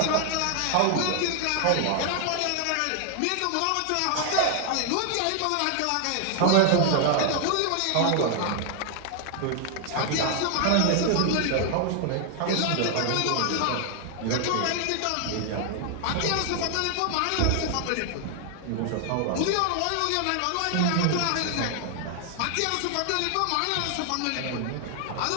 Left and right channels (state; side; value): different; both; correlation 0.00